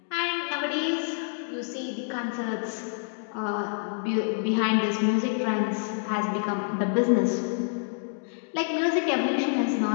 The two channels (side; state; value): right; silent; digital silence